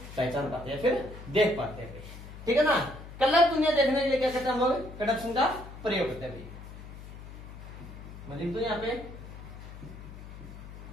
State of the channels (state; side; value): noise; left; hum, 13 dB below the sound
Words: पहचान पाते हैं, फिर देख पाते हैं, ठीक है ना। कलर दुनिया देखने के लिए क्या करते हैं हम लोग, कंडक्शन का प्रयोग करते हैं। मैं लिख दूं यहाँ पे,